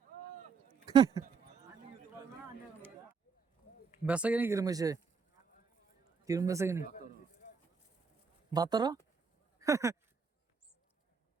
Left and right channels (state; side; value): quieter; left; 5.5 dB